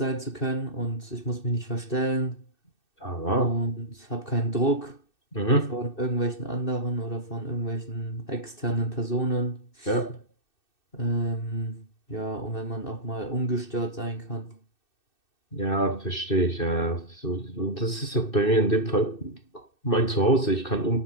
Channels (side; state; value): right; late; 2.6 ms